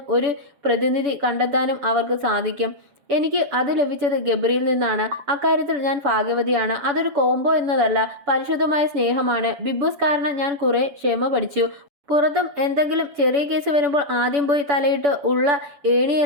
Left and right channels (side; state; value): left; late; 7.0 ms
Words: ഒരു പ്രതിനിധി കണ്ടെത്താനും അവർക്ക് സാധിക്കും. എനിക്ക് അത് ലഭിച്ചത് ഗബ്രിയിൽ നിന്നാണ്. അക്കാര്യത്തിൽ ഞാൻ ഭാഗ്യവതിയാണ്. അതൊരു കോംബോ എന്നതല്ല, പരിശുദ്ധമായ സ്നേഹമാണ്. ബിഗ് ബോസ് കാരണം ഞാൻ കുറെ ക്ഷമ പഠിച്ചു. പുറത്തും എന്തെങ്കിലും ചെറിയ കേസ് വരുമ്പോൾ ആദ്യം പോയി തലയിട്ട് ഉള്ള